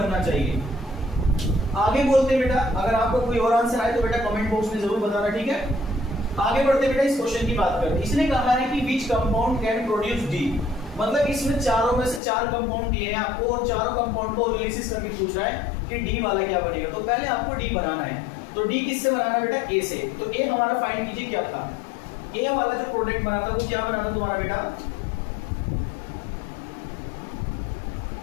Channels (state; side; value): drops out; right; at 12.2 s